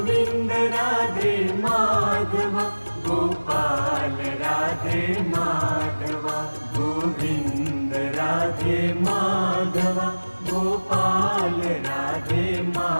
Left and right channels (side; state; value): both; inverted; correlation -1.00